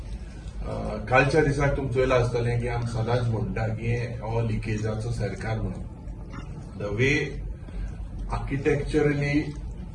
कालच्या दिसाक तुमचो येयला आसतलें की आमी सदांच म्हणटा की हो लिकेजाचो सरकार म्हणून. The way architecturally,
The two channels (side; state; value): both; identical; correlation 1.00